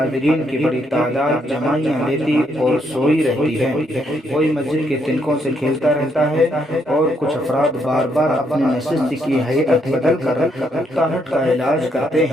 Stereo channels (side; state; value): both; normal; correlation 0.74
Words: کی بڑی تعداد جمائیاں لیتی اور سوئی رہتی ہے، کوئی مسجد کے تنکوں سے کھیلتا رہتا ہے اور کچھ افراد بار بار اپنی نشست کی ہیئت بدل کر اکتاہٹ کا علاج کرتے